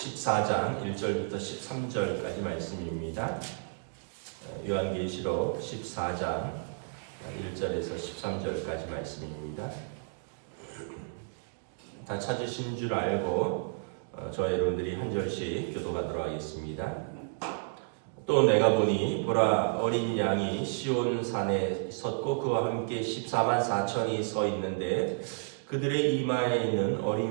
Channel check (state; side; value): silent; left; digital silence